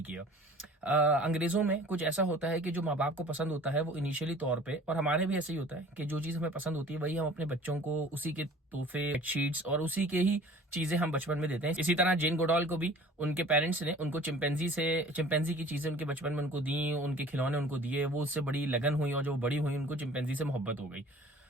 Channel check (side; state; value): both; normal; correlation 0.47